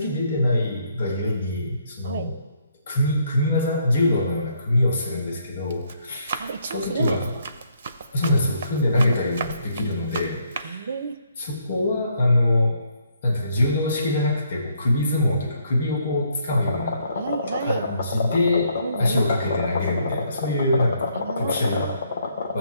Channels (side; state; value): both; inverted; correlation -0.70